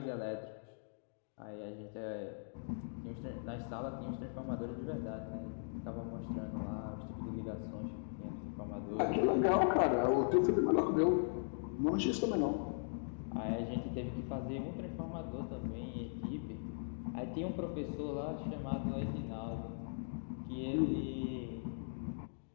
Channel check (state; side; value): silent; right; digital silence